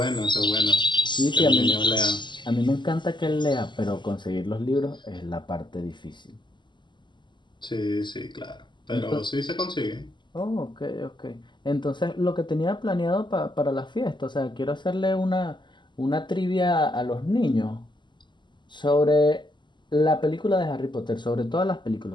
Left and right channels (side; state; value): right; late; 0.22 ms